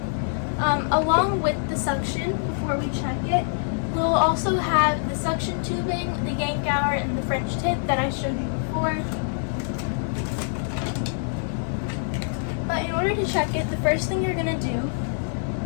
Along with the suction, before we check it, we'll also have the suction tubing, the yank hour, and the French tip that I showed you before. But in order to check it, the first thing you're going to do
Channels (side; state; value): right; silent; digital silence